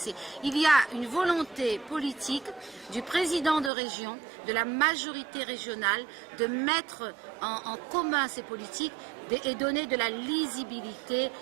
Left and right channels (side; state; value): left; drops out; at 3.7 s